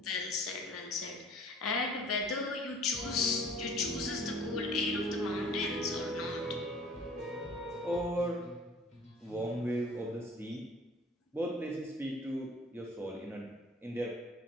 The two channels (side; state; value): both; normal; correlation 0.49